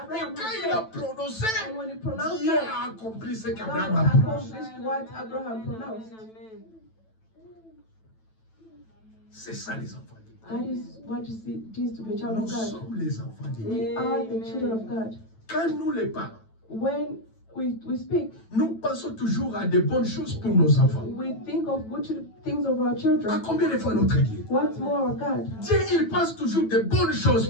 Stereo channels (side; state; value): right; late; 9.1 ms